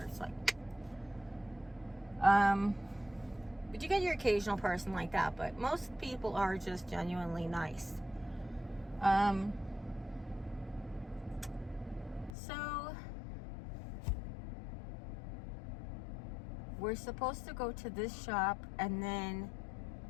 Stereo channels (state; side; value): drops out; right; at 12.3 s